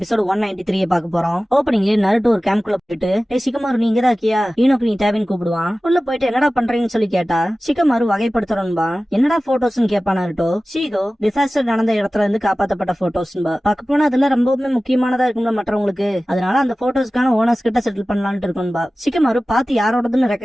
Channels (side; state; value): both; normal; correlation 0.96